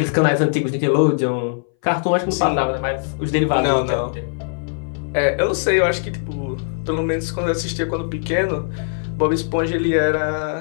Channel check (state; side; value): silent; right; 61 dB below the other